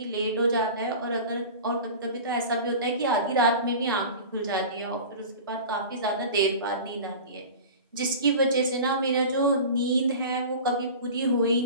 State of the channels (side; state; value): both; inverted; correlation -0.35